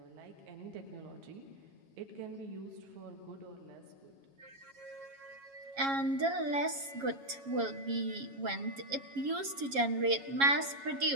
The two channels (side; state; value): left; late; 7.3 ms